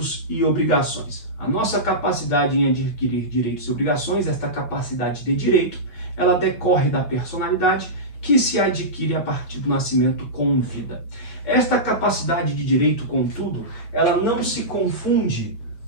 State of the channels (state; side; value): late; right; 8.7 ms